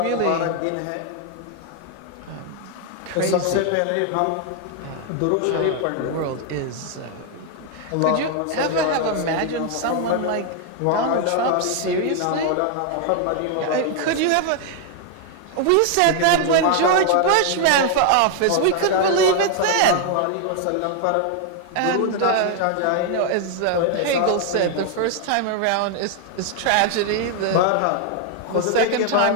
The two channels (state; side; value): different; both; correlation 0.00